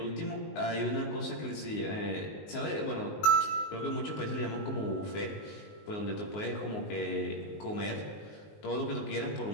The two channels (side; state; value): right; late; 19 ms